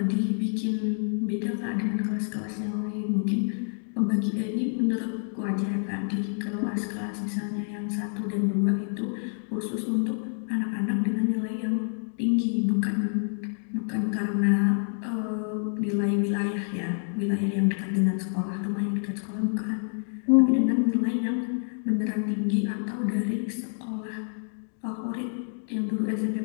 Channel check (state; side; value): silent; right; digital silence